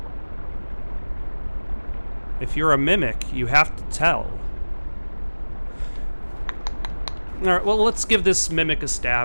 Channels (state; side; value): inverted; both; correlation -1.00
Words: If you're a mimic, you have to tell. Alright, well, let's give this mimic a